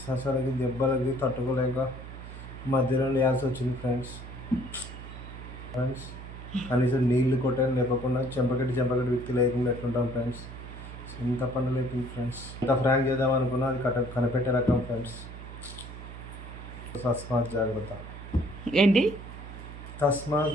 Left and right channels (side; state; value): right; noise; hum, 12 dB below the sound